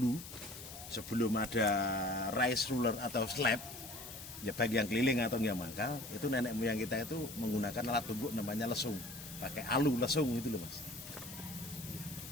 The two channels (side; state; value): left; noise; hiss, 12 dB below the sound